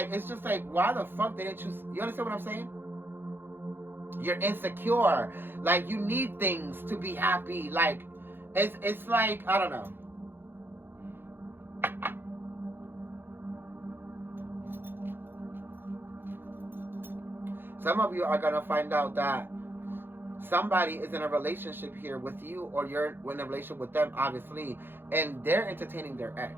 it's just like, why the fuck didn't you understand what I'm saying? You're insecure. Like, you need things to be happy. Like, it's like, I don't know. Some of you are going to find out that somebody is in a relationship here with you, or you're in a relationship with them, obviously, and they're entertaining their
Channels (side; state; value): left; late; 0.10 ms